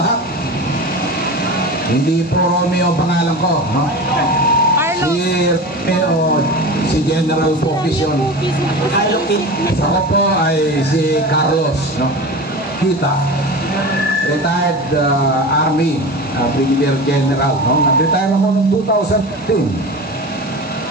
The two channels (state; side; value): normal; both; correlation 0.30